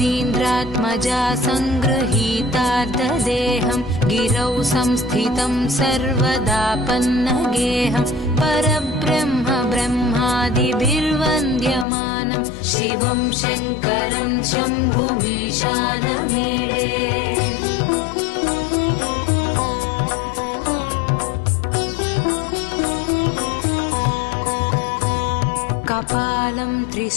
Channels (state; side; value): drops out; right; at 11.9 s